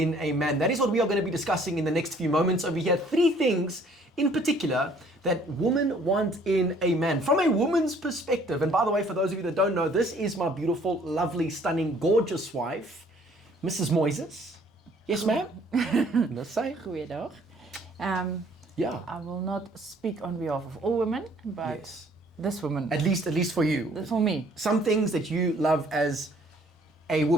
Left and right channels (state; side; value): normal; both; correlation 0.59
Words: a man? That is what we are going to be discussing in the next few moments over here. 3 things in particular that women want in a man from a woman's perspective. And by the way, for those of you that don't know, this is my beautiful, lovely, stunning, gorgeous wife, Mrs. Moyses. Yes, ma'am? Let's say. Goeiedag. Yeah. I will not speak on behalf of all women, but Yes. this woman. At least for you. For me. Some things that you love as a